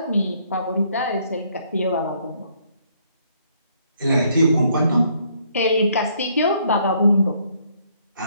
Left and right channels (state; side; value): inverted; both; correlation -0.68